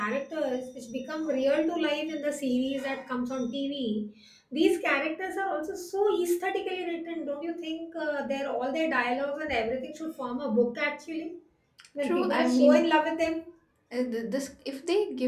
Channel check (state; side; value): identical; both; correlation 1.00